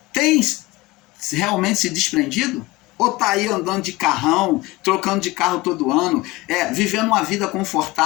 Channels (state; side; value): quieter; right; 20.4 dB